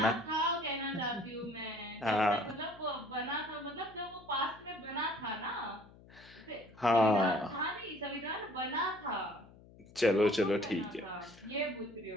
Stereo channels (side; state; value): left; noise; hum, 22 dB below the sound